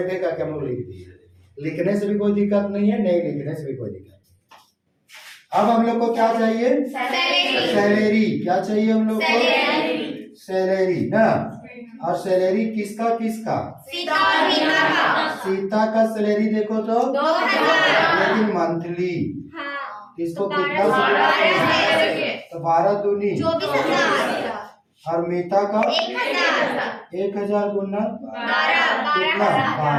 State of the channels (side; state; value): both; identical; correlation 1.00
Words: है क्या हम लोग लिख दिए। लिखने से भी कोई दिक्कत नहीं है, नहीं लिखने से भी कोई दिक्कत। अब हम लोग को क्या चाहिए? सैलरी। क्या चाहिए हम लोग को? सैलरी ना। और सैलरी किसका किसका? सीता का सैलरी देखो तो 2000, लेकिन मंथली किसको कितना? तो 12 दूनी 24,000। और मीता का 1000 गुना कितना?